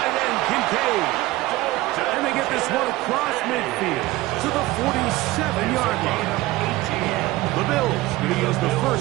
end, Kincaid. And they get this one across midfield to the 47-yard line. The Bills going to use the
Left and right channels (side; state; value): left; quieter; 18.5 dB